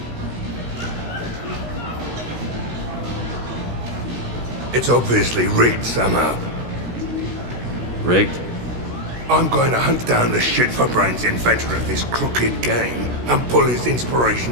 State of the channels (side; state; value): left; late; 16 ms